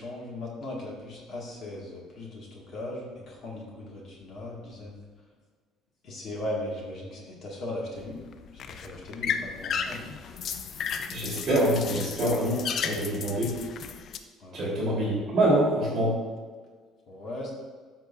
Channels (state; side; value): normal; both; correlation 0.48